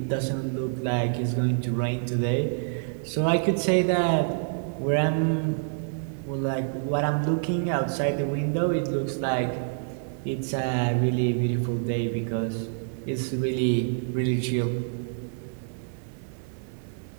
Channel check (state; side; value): silent; left; digital silence